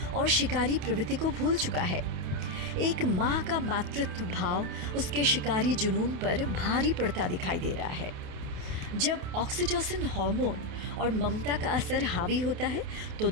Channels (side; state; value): left; late; 28 ms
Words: और शिकारी प्रवृत्ति को भूल चुका है। एक माँ का मातृत्व भाव उसके शिकारी जुनून पर भारी पड़ता दिखाई दे रहा है। जब ऑक्सीटोसिन हार्मोन और ममता का असर हावी होता है, तो